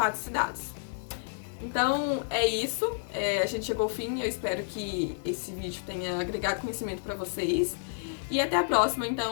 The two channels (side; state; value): right; silent; 58 dB below the other